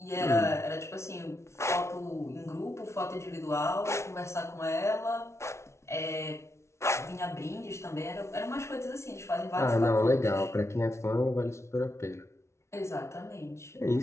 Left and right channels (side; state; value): right; late; 0.13 ms